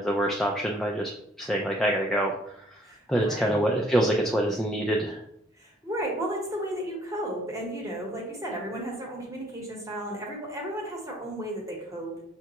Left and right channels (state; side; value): normal; both; correlation 0.61